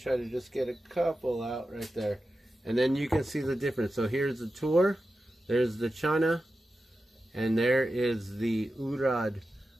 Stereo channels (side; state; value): both; normal; correlation 0.92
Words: to just get a couple out right there. And then you can see the difference. So here's the Toor, there's the Channa, and there is the Urad